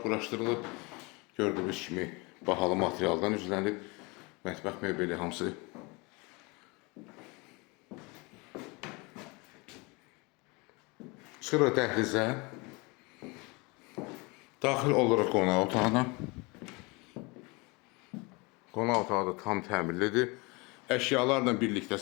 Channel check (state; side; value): quieter; right; 27.1 dB